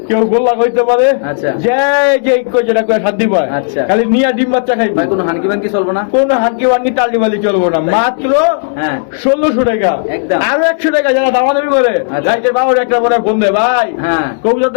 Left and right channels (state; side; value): silent; right; digital silence